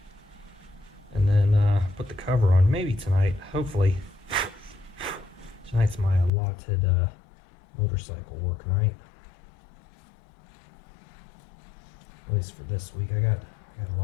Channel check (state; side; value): drops out; right; at 6.3 s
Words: And then put the cover on maybe tonight. Hopefully. Tonight's my allotted motorcycle work night. At least for this week. I got a